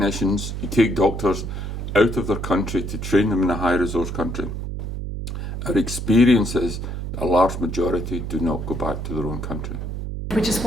you take doctors out of their country to train them in a high-resource country, our experience is a large majority do not go back to their own country. Which is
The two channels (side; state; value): right; noise; hum, 5 dB below the sound